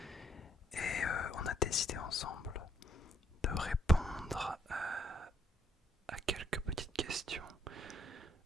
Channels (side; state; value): both; normal; correlation 0.72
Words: Et on a décidé ensemble de répondre à quelques petites questions